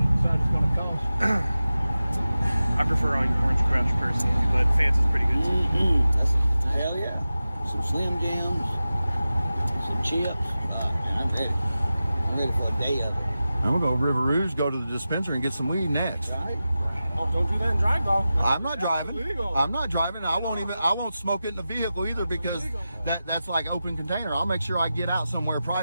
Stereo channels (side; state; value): both; inverted; correlation -0.94